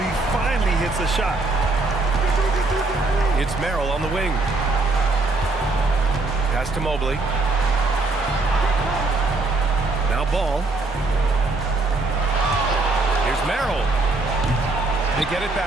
he finally hits a shot. It's Merrill on the wing. Pass to Mobley. Now Ball. Here's Merrill. They get it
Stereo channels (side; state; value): left; quieter; 3.3 dB